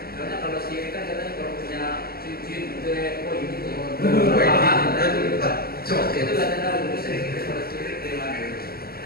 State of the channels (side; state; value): right; late; 0.45 ms